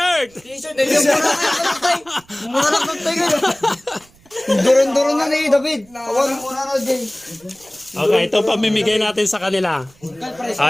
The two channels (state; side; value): noise; right; rumble, 29 dB below the sound